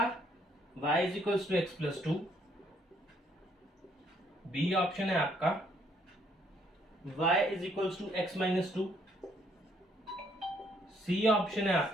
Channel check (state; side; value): normal; both; correlation 0.68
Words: y is equals to x plus two, B option है आपका y is equals to x minus two, C option है